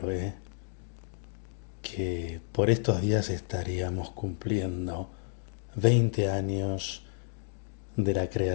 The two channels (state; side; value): silent; right; digital silence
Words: que por estos días estaríamos cumpliendo 20 años de la